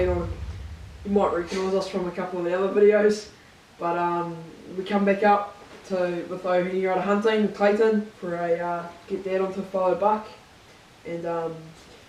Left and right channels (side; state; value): both; identical; correlation 1.00